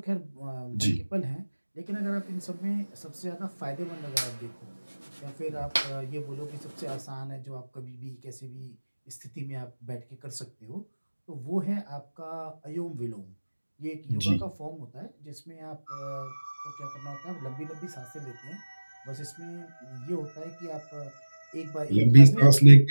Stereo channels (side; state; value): both; inverted; correlation -1.00